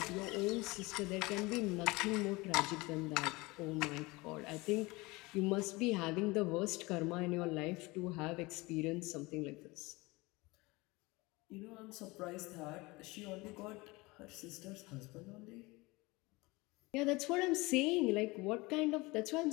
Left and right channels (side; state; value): right; quieter; 23.2 dB